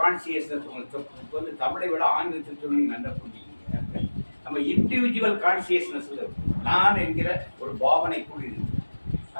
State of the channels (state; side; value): inverted; both; correlation -1.00